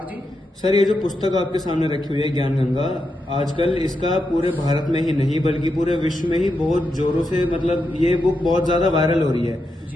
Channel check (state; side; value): normal; both; correlation 0.85